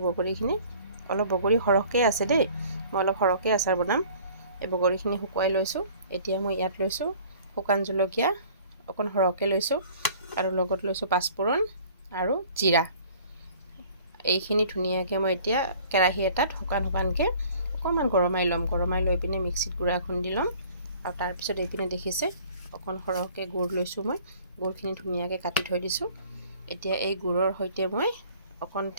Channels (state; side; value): inverted; both; correlation -0.51